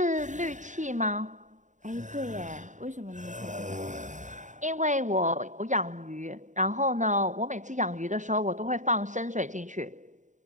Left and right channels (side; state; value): left; late; 0.36 ms